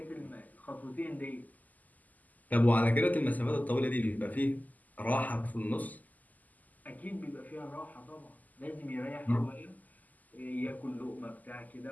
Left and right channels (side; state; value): right; late; 0.080 ms